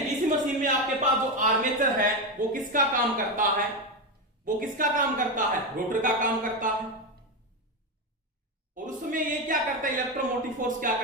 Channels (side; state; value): both; normal; correlation 0.12